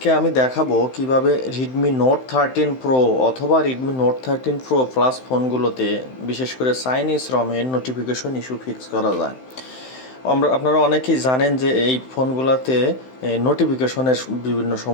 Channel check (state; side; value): late; right; 16 ms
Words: আমি দেখাবো কিভাবে Redmi Note 13 Pro অথবা Redmi Note 13 Pro Plus ফোনগুলোতে বিশেষ করে চাইনিজ রমের নোটিফিকেশন ইস্যু ফিক্স করা যায়। আপনারা অনেকেই জানেন যে এই ফোনগুলোতে নোটিফিকেশনের বিভিন্ন